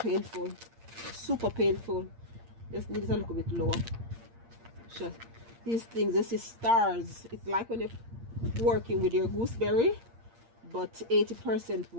super painful. Just need it a little bit lower. Just these things, this is stars. It's like when you're working with your gooseberry, but 80%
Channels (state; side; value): late; left; 8.7 ms